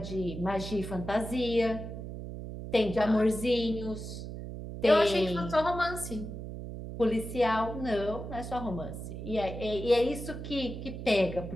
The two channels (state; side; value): noise; right; hum, 8 dB below the sound